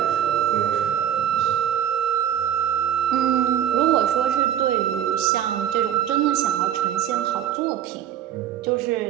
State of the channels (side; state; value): left; quieter; 10.4 dB